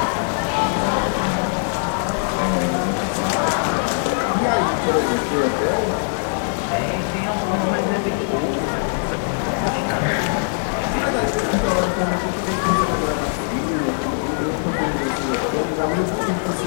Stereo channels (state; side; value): silent; right; digital silence